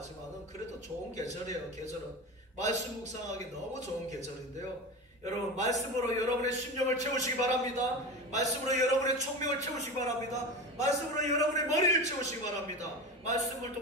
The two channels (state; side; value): normal; both; correlation 0.26